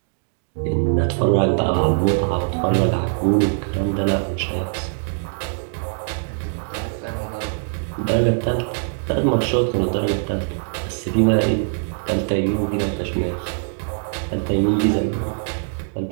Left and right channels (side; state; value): left; silent; digital silence